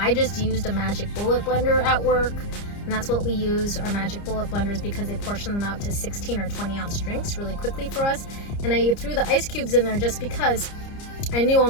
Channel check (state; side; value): late; right; 30 ms